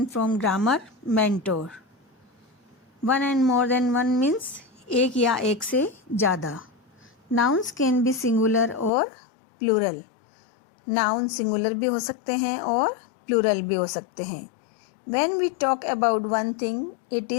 from Grammar Mentor. One and more than one means एक या एक से ज़्यादा. Nouns can be singular और plural. Noun singular भी हो सकते हैं और plural भी हो सकते हैं. When we talk about one thing, it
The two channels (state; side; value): drops out; right; at 8.9 s